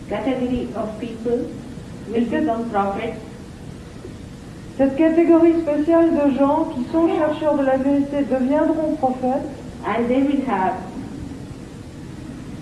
category of people will become prophets. Cette catégorie spéciale de gens qui sont chercheurs de la vérité deviendront prophètes And they will have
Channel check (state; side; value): identical; both; correlation 1.00